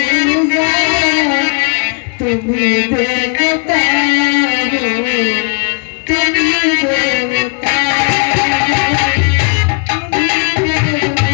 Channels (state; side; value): quieter; right; 37.3 dB